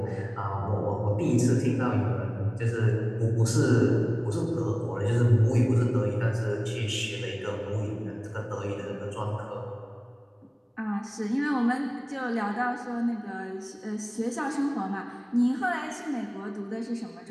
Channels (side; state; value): both; identical; correlation 1.00